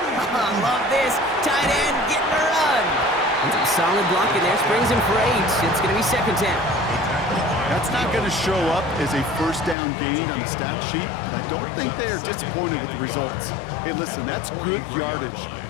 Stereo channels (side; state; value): right; drops out; at 9.8 s